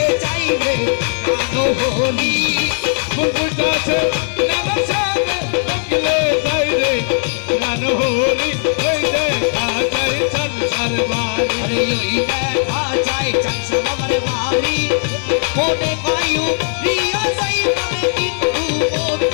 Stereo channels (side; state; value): right; silent; 63 dB below the other